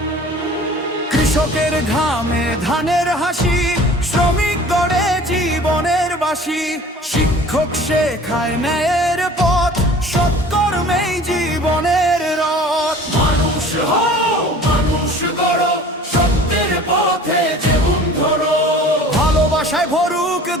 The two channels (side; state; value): both; normal; correlation 0.46